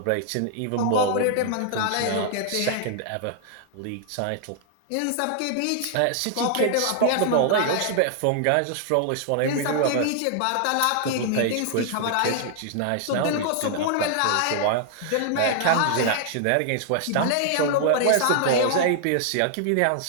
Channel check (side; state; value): both; different; correlation -0.01